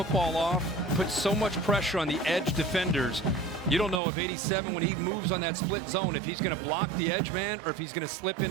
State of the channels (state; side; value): drops out; left; at 4.0 s